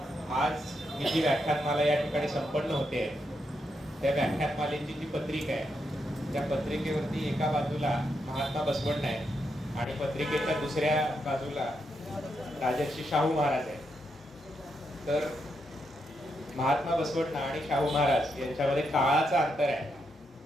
आज ही जी व्याख्यानमाला या ठिकाणी संपन्न होते, त्या व्याख्यानमालेची जी पत्रिका आहे, त्या पत्रिकेवरती एका बाजूला महात्मा बसवण्ण आहे आणि पत्रिकेच्या दुसऱ्या बाजूला राजर्षी शाहू महाराज आहे. तर महात्मा बसवण्ण आणि शाहू महाराज यांच्यामध्ये काळाचा अंतर आहे,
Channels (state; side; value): normal; both; correlation 0.82